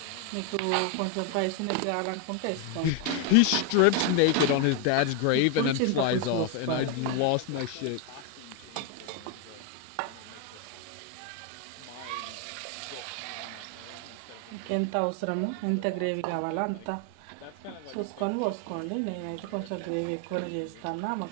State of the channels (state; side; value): different; both; correlation 0.01